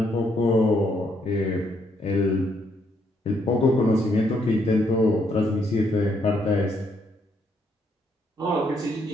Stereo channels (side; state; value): both; normal; correlation 0.73